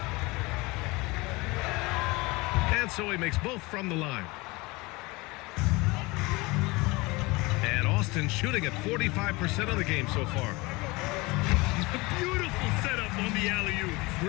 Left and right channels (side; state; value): right; quieter; 23.8 dB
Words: And so he makes both from the line. And Austin shooting at 45% of the game so far. Beautiful setup on the alley-oop.